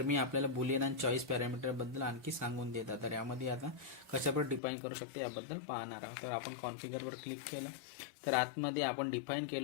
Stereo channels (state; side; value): drops out; right; at 4.6 s